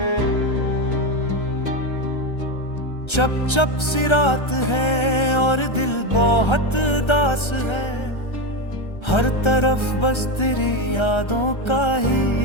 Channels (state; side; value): late; right; 1.3 ms